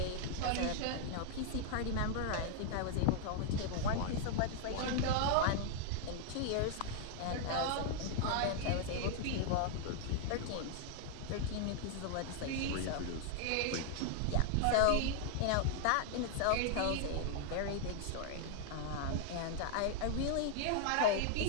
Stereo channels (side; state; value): both; different; correlation 0.00